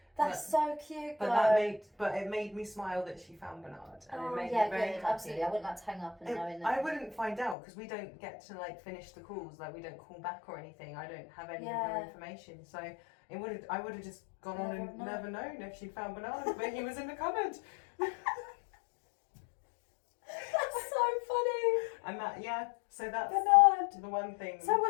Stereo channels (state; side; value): drops out; right; at 7.6 s